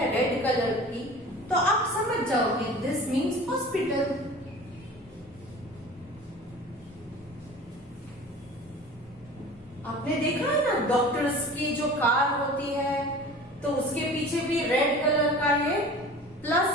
रेड कलर की तो आप समझ जाओगे दिस मीन्स हॉस्पिटल। आपने देखा है ना डॉक्टर्स की जो कार होती है तो उसके पीछे भी रेड कलर का ये प्लस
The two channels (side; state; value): both; normal; correlation 0.41